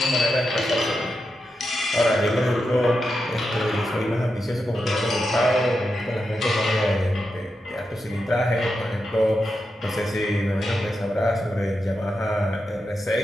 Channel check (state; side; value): normal; both; correlation 0.87